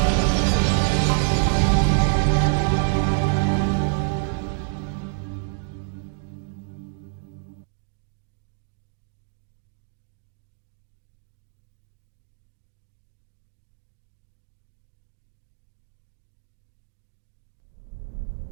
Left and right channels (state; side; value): silent; left; 60 dB below the other